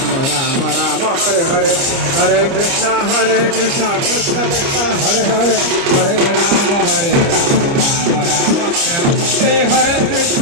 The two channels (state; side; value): late; left; 29 ms